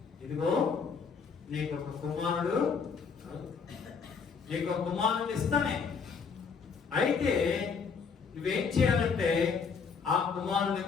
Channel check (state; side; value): quieter; right; 5.7 dB